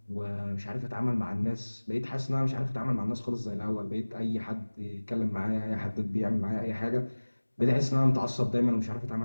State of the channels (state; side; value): inverted; both; correlation -1.00